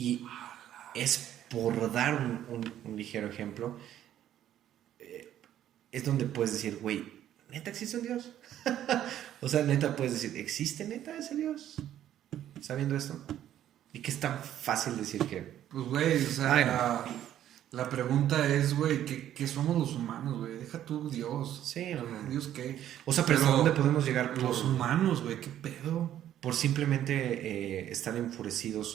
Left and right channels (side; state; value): left; quieter; 11.5 dB